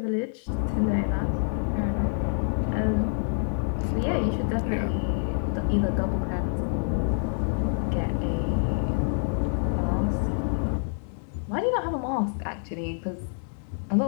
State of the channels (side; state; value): right; silent; digital silence